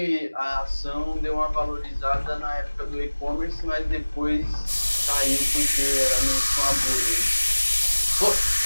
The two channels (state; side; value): inverted; both; correlation -1.00